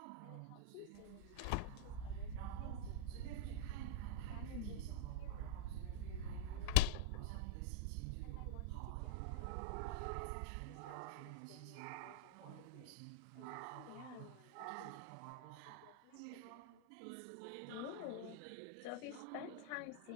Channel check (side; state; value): both; different; correlation -0.01